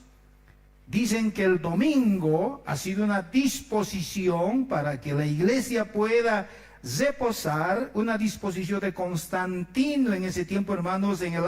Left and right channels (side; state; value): both; identical; correlation 1.00